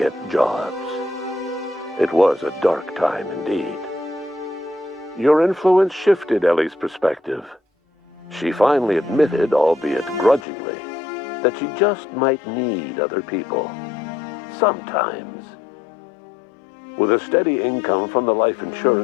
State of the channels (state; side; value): drops out; right; at 10.5 s